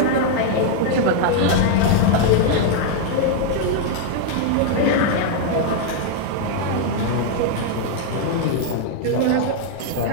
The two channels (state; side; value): different; both; correlation 0.00